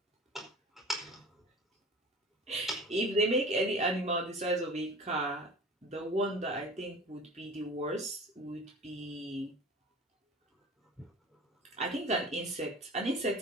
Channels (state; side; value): normal; both; correlation 0.39